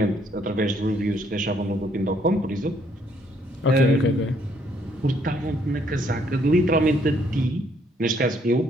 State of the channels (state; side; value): normal; both; correlation 0.68